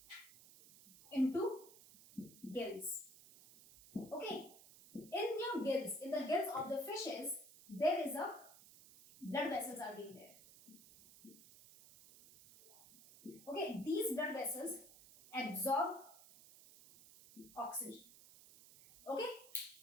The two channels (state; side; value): noise; right; hiss, 20 dB below the sound